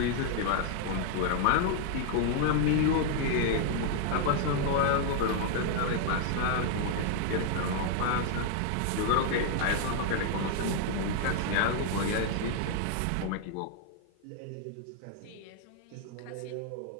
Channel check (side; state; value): both; different; correlation 0.00